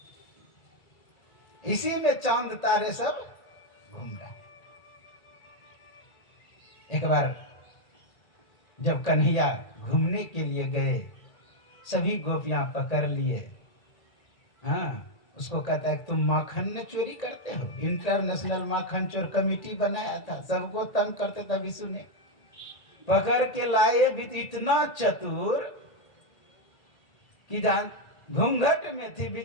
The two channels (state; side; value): late; right; 2.3 ms